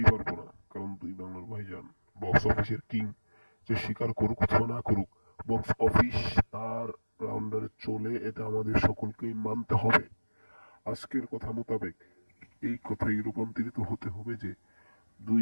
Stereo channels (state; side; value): inverted; both; correlation -1.00